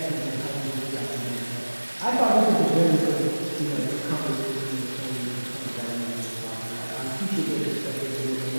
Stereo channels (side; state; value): both; inverted; correlation -1.00